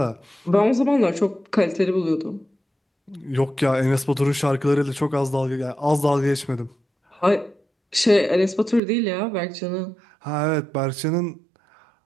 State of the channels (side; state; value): left; drops out; at 8.8 s